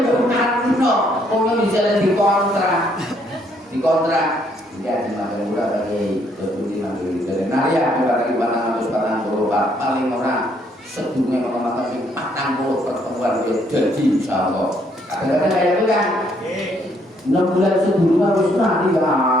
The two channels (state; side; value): normal; both; correlation 0.69